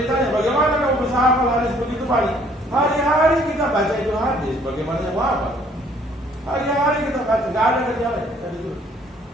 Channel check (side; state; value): both; normal; correlation 0.61